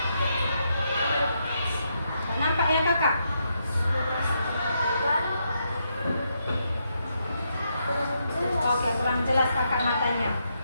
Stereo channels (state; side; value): inverted; both; correlation -0.80